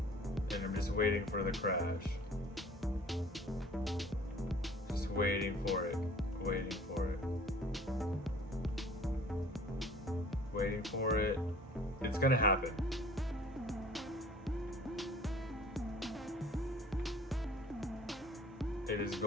I'm just waiting for the crash. Just waiting for it. Waiting for it. Waiting for it. It's gonna happen. It is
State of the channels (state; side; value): normal; both; correlation 0.50